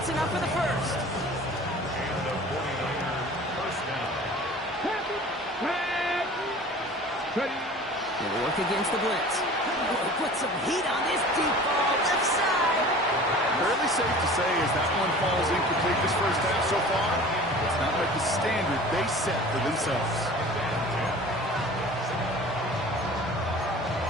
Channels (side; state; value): both; normal; correlation 0.42